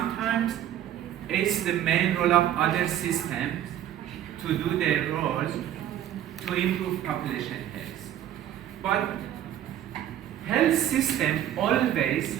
it's the main role of other systems to do their role to improve population health. But health system always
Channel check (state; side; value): quieter; left; 11.4 dB